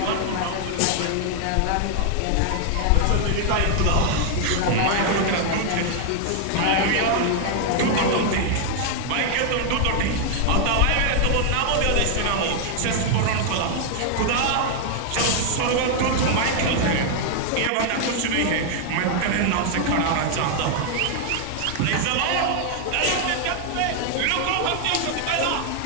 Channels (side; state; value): both; different; correlation 0.00